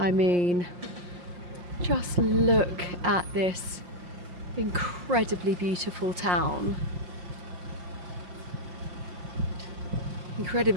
mean, just look at this incredibly beautiful town.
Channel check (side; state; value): left; late; 5.6 ms